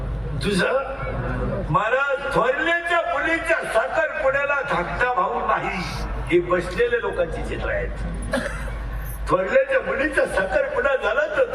तुझं. महाराज थोरल्याच्या मुलीच्या साखरपुड्याला धाकटा भाऊ नाही, हे बसलेल्या लोकांची चित्र आहेत. थोरल्याच्या मुलीचा साखरपुडा झाला तर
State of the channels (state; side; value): identical; both; correlation 1.00